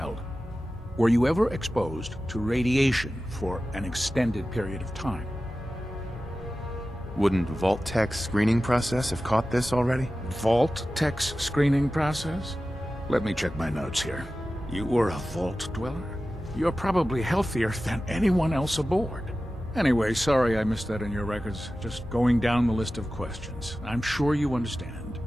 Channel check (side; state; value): both; normal; correlation 0.94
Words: were you ever exposed to radiation for an extended period of time? Wouldn't Vault-Tech's screening process have caught this already? Vault-Tech's screening process? Let me check my notes here. You were a Vault Dweller? You're probably healthier than anyone else aboard. Anyway, sorry I missed that in your records. Just going down the list of questions. I'm sure you understand.